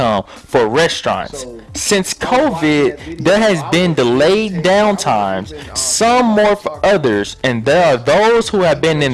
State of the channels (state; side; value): identical; both; correlation 1.00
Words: for restaurants. Since COVID, there has been delayed downtimes, some more for others, and there are those who have been